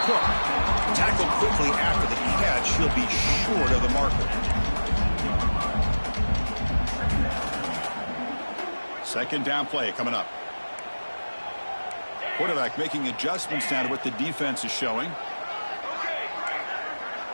Cook. Tackled quickly after the catch. He'll be short of the marker. Second down play coming up. Quarterback making adjustments now to what the defense is showing.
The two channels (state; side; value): inverted; both; correlation -1.00